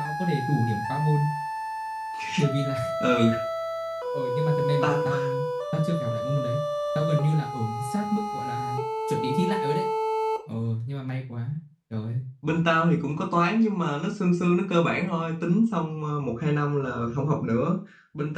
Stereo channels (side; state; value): both; identical; correlation 1.00